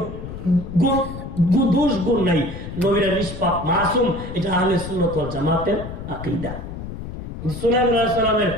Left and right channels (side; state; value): left; noise; rumble, 9 dB below the sound